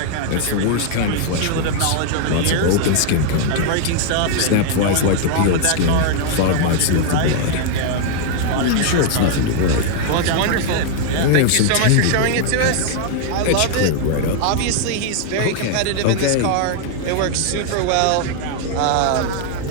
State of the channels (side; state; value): both; different; correlation 0.00